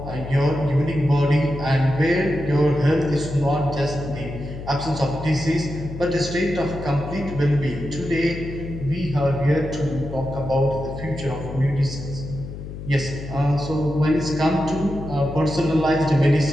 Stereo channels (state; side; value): noise; left; hum, 10 dB below the sound